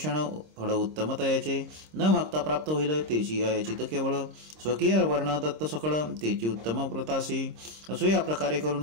फळ उत्तम तयाचे. न मागता प्राप्त होईल तेची अयाचित केवळ. स्वकीय वर्ण दत्त सकळ तेची उत्तम व्रतासी. असो या प्रकारे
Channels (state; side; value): late; left; 26 ms